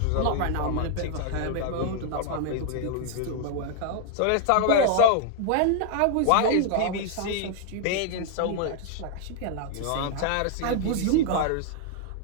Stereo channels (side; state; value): both; different; correlation 0.00